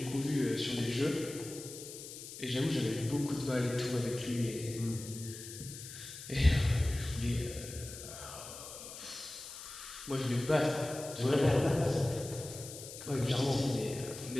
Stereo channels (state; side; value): noise; left; hiss, 12 dB below the sound